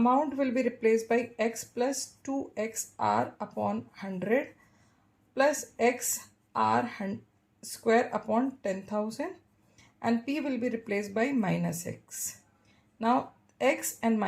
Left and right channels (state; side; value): identical; both; correlation 1.00